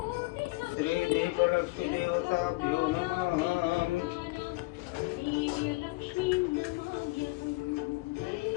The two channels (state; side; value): quieter; right; 23.7 dB